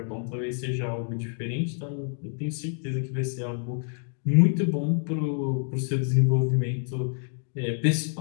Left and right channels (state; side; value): silent; right; 60 dB below the other